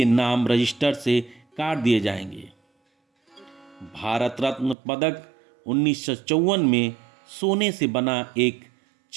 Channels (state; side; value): drops out; left; at 4.8 s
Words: नाम रजिस्टर से काट दिए जाएंगे। भारत रत्न पदक 1954 में सोने से बना एक